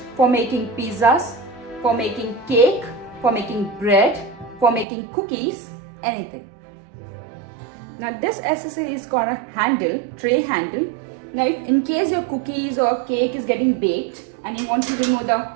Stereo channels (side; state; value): left; drops out; at 4.9 s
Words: for making pizzas, for making cake, for making bread, for making cookies, anything. Now this accessory is called a handle, tray handle. Now if in case your cookies or cake is getting baked and you want to remove the